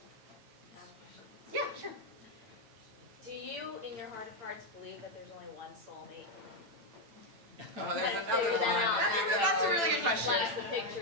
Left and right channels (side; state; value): left; late; 8.8 ms